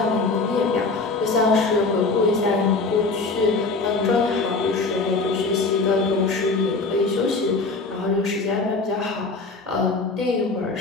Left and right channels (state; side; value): quieter; right; 3.8 dB